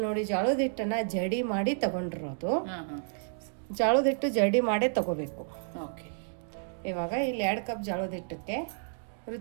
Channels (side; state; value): left; silent; digital silence